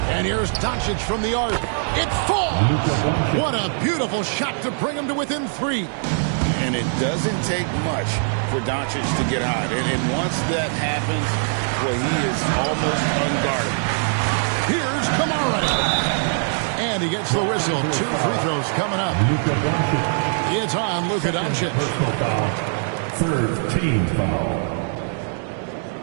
And here's Doncic from the arc. It falls! What a beautiful shot to bring him to within 3. And it doesn't take much for Doncic to get hot. And once that happens, well, he is almost unguarded. Here's Kamara. And he gets the whistle. 2 free throws coming up. It's on Luka Doncic. Personal foul. Third team foul.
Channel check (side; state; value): left; silent; digital silence